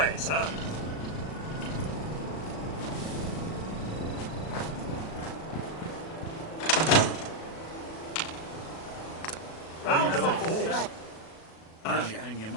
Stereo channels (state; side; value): late; right; 37 ms